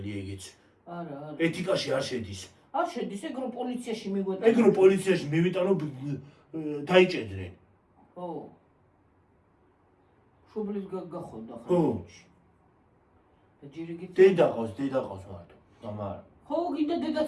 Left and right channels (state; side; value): identical; both; correlation 1.00